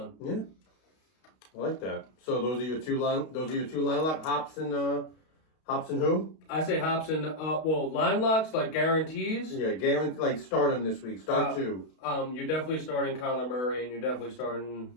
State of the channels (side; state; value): right; late; 32 ms